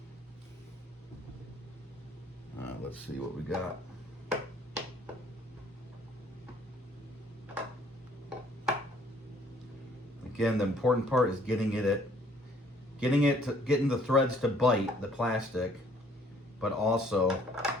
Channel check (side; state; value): both; normal; correlation 0.61